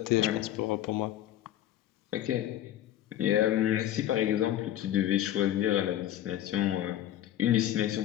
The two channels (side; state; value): right; quieter; 12.3 dB